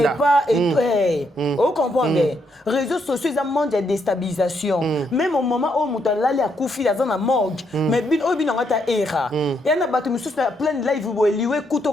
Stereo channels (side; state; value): both; normal; correlation 0.76